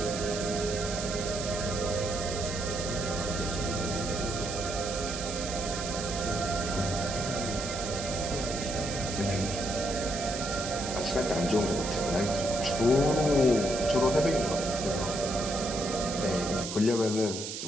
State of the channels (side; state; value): right; noise; hiss, 6 dB below the sound